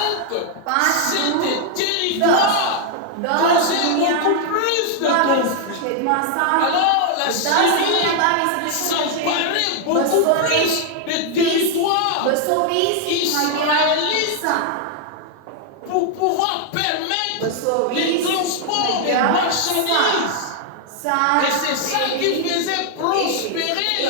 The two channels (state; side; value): different; both; correlation 0.00